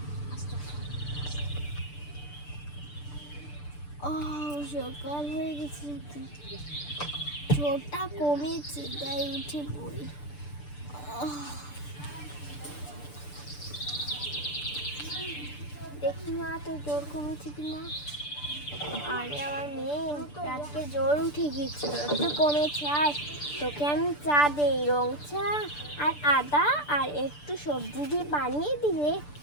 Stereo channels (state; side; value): late; right; 6.8 ms